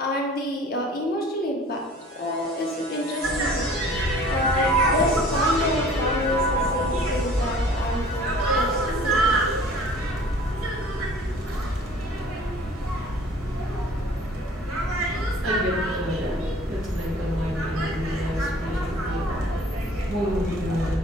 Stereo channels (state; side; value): normal; both; correlation 0.49